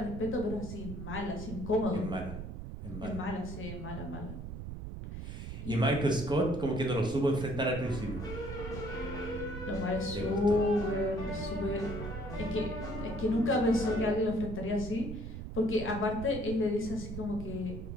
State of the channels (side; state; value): right; noise; rumble, 8 dB below the sound